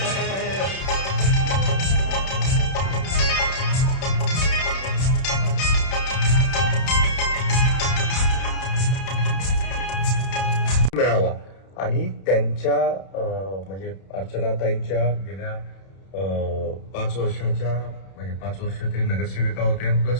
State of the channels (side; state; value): right; late; 31 ms